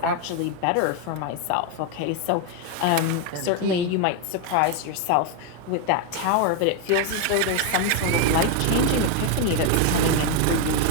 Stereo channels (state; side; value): different; both; correlation 0.01